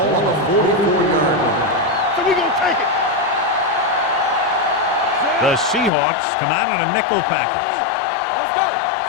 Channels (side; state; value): right; drops out; at 5.9 s